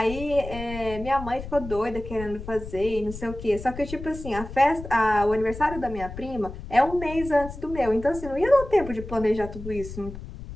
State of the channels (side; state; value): left; noise; rumble, 11 dB below the sound